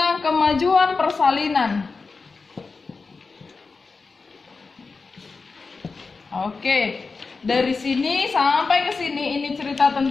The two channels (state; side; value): quieter; right; 4.3 dB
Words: kemajuan persalinan. Oke, dari sini sampai ke sini ini cerita